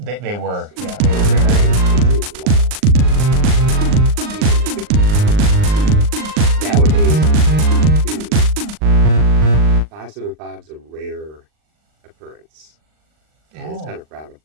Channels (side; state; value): left; late; 39 ms